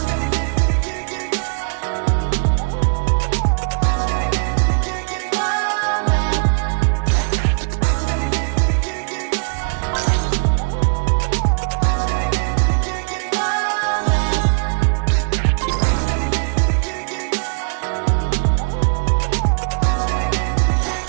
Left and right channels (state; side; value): silent; left; 66 dB below the other